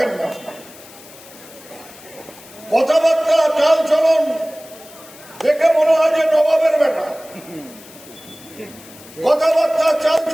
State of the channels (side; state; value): left; noise; hiss, 20 dB below the sound